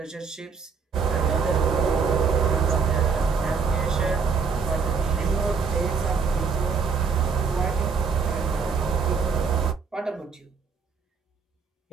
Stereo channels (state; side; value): quieter; left; 5.6 dB